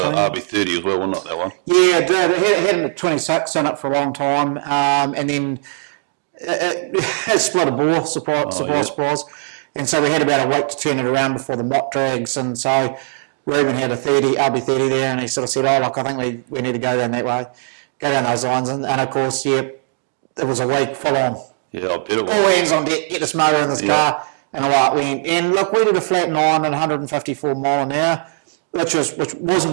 RB30 as well, wasn't it, that one? Yeah, it did. It had a 26 in it for a long time, and then it split a bore, surprise. And so we had about a week to turn it around before the mock drags, and so Ruben had a RB30 there, and he sort of said, oh, look, I think we need to go down that way, go down those lines, and of course, yeah, it was a week full on. Yeah, I bet it was. All hands on deck, get this motor in this car, and away it went. And look, we did a flat 9 at 154 mile an hour, which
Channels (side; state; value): left; silent; 67 dB below the other